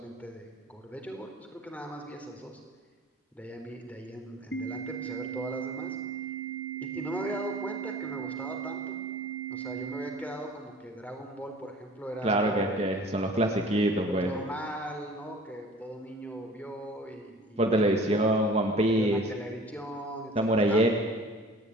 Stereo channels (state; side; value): normal; both; correlation 0.46